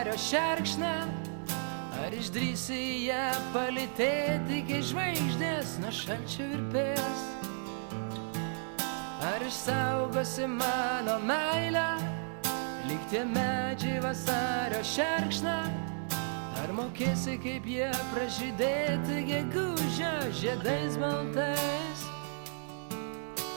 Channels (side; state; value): left; silent; digital silence